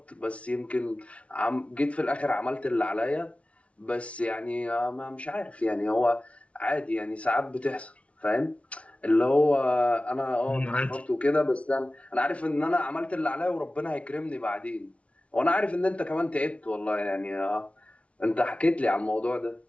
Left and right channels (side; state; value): right; late; 0.063 ms